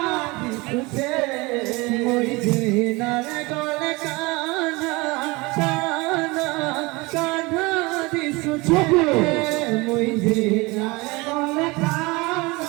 দিছে মই যে নার গলে কানা কানা কানা দিছে মই যে নার গলে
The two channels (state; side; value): quieter; left; 24.3 dB